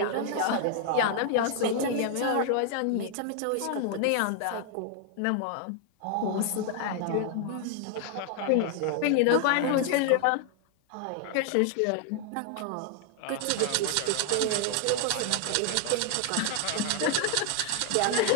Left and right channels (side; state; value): both; different; correlation 0.00